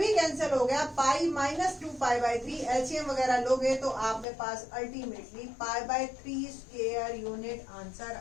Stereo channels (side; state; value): right; drops out; at 4.2 s